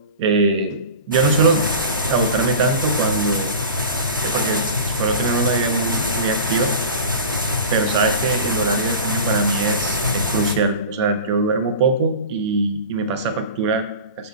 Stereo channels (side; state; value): both; inverted; correlation -0.34